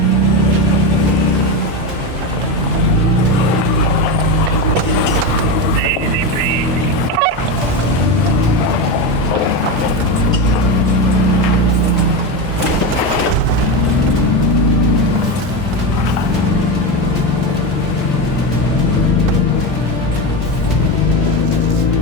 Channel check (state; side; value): normal; both; correlation 0.16